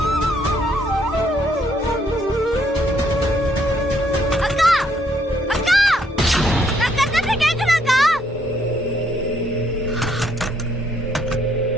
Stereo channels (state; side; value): normal; both; correlation 0.70